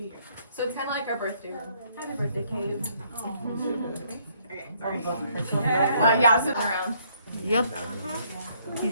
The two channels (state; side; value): inverted; both; correlation -0.67